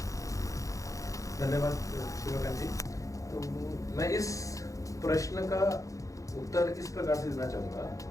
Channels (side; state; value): right; late; 0.16 ms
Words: धन्यवाद शिवकांत जी। तो मैं इस प्रश्न का उत्तर इस प्रकार से देना चाहूँगा,